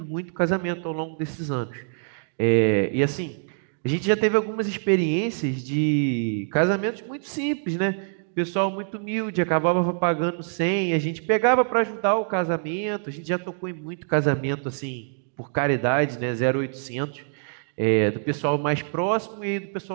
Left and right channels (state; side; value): silent; left; digital silence